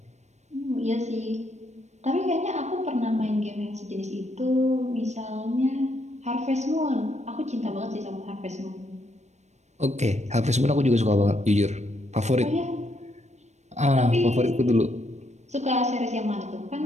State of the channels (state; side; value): late; left; 0.33 ms